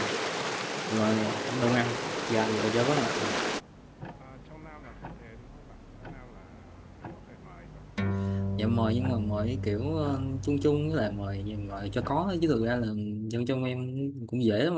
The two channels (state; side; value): identical; both; correlation 1.00